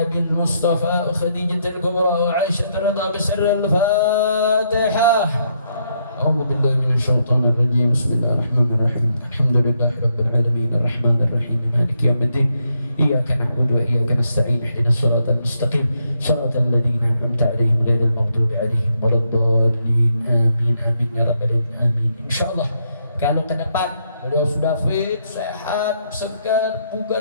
Mustafa Khadijatul Kubra wa Aisyah ridha bisirril Fatihah. أعوذ بالله من الشيطان الرجيم بسم الله الرحمن الرحيم الحمد لله رب العالمين الرحمن الرحيم مالك يوم الدين إياك نعبد وإياك نستعين اهدنا الصراط المستقيم صراط الذين أنعمت عليهم غير المغضوب عليهم ولا الضالين آمين آمين يا رب العالمين آمين إن شاء الله. Kalau ke depan beliau sudah fit, sehat, segar,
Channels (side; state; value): both; inverted; correlation -0.76